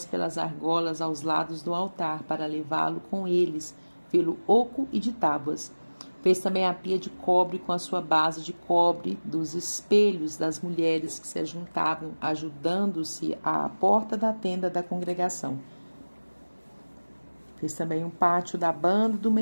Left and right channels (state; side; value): inverted; both; correlation -1.00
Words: pelas argolas aos lados do altar para levá-lo com eles pelo oco e de tábuas. Fez também a pia de cobre com a sua base de cobre dos espelhos das mulheres que se ajuntavam, ajudando-se à porta da tenda da congregação. Fez também um pátio da banda do